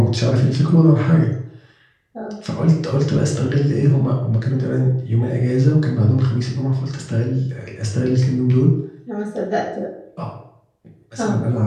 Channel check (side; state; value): both; identical; correlation 1.00